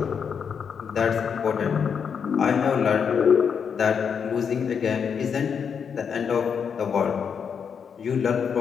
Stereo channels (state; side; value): quieter; right; 6.8 dB